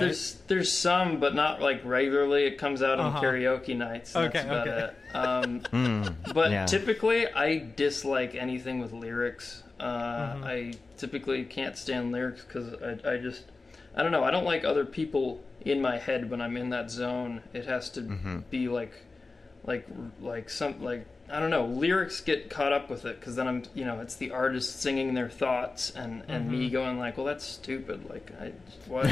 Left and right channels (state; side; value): quieter; right; 3.7 dB